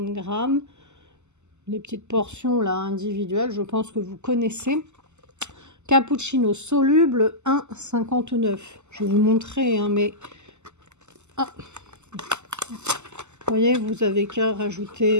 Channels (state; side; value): late; left; 0.83 ms